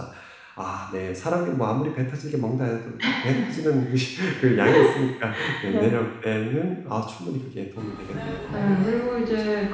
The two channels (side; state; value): both; identical; correlation 1.00